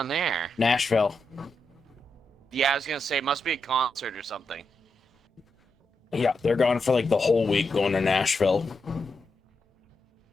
there? Nashville. Yeah, I was gonna say, it must be a concert or something. Yeah, they're gone for like the whole week going to Nashville.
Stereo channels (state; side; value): normal; both; correlation 0.85